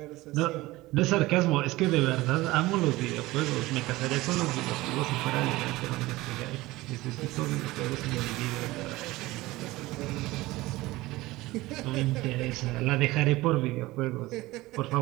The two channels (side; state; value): left; quieter; 19.2 dB